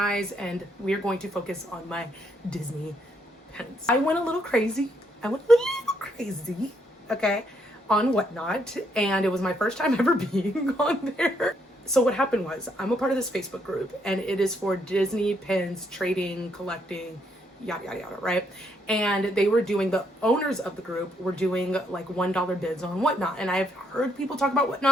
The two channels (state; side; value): normal; both; correlation 0.73